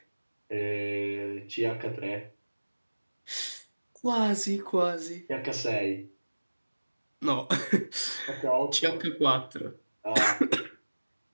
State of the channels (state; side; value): inverted; both; correlation -1.00